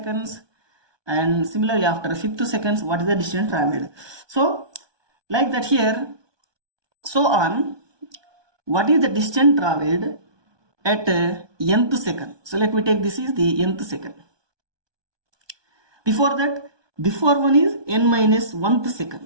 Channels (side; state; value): left; late; 1.2 ms